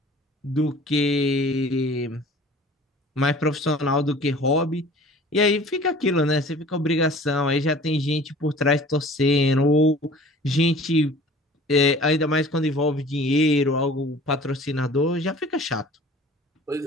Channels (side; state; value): both; normal; correlation 0.47